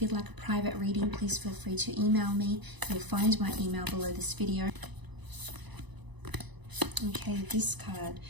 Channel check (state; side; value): late; left; 1.0 ms